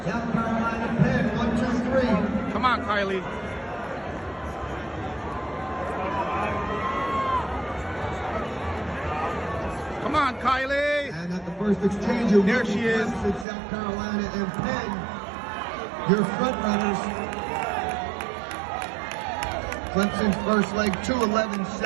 South Carolina, Penn, 1, 2, 3. Come on, Kieley. Come on, Kieley. And at the first exchange, there she is. Clemson, South Carolina, and Penn, your front runners. Clemson's first leg,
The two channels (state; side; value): drops out; left; at 13.5 s